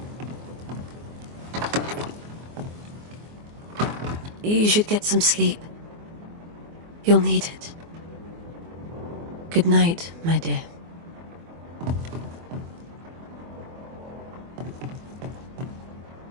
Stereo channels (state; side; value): late; left; 24 ms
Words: You should get some sleep. You'll need it. Good night, my dear.